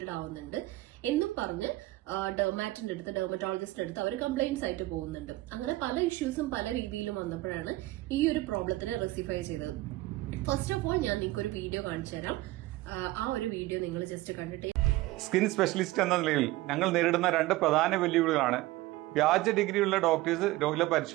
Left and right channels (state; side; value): quieter; left; 18.3 dB